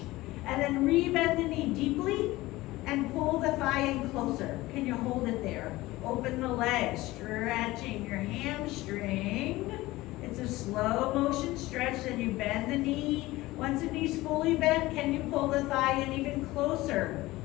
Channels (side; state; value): right; quieter; 18.7 dB